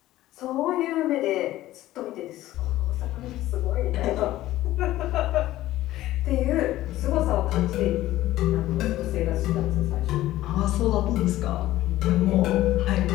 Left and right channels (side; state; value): right; quieter; 15.3 dB